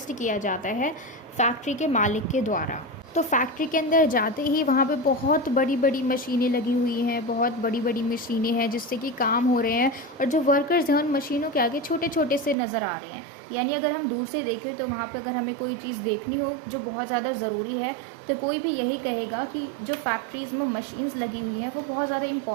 किया जाता है फैक्ट्री के मालिक के द्वारा। तो फैक्ट्री के अंदर जाते ही वहाँ पे बहुत बड़ी बड़ी मशीनें लगी हुई हैं, बहुत बड़ी बड़ी मशीनें हैं जिससे कि काम हो रहे हैं, और जो वर्कर्स हैं उन मशीनों के आगे छोटे छोटे से नज़र आ रहे हैं। यानी अगर हम दूर से देखें तो वहाँ पे अगर हमें कोई चीज़ देखनी हो जो बहुत ज़्यादा ज़रूरी है तो कोई भी यही कहेगा कि जो फैक्ट्रीज़ में मशीन्स लगी हुई हैं वो बहुत ज़्यादा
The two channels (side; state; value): left; drops out; at 12.6 s